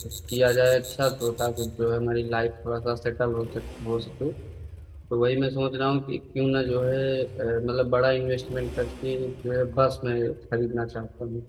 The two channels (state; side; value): identical; both; correlation 1.00